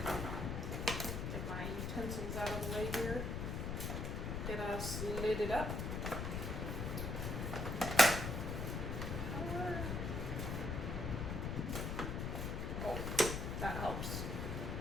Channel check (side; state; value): left; noise; rumble, 2 dB below the sound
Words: Get my utensils out of the way here. Get us lidded up. Oh, that helps.